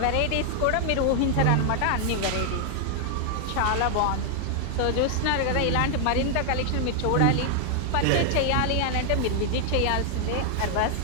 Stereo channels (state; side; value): different; both; correlation 0.00